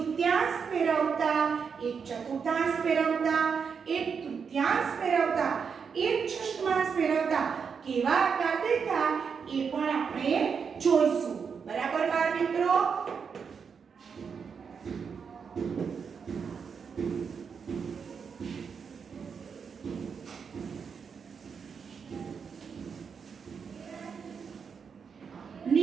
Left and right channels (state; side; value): quieter; left; 6.2 dB